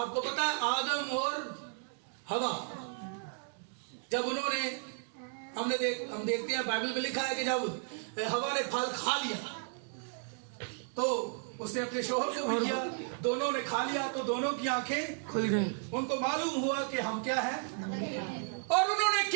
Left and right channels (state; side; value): silent; left; 55 dB below the other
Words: पता है आदम और हवा, जब उन्होंने, हम देखते हैं बाइबल में लिखा है कि जब हवा ने फल खा लिया तो उसने अपने शोहर को भी किया, दोनों ने खा लिया, तो दोनों की आंखें खुल गई। उनको मालूम हुआ कि हम क्या है। और उन्होंने